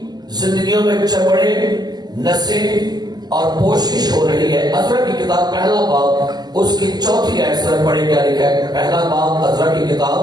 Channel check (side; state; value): left; late; 0.20 ms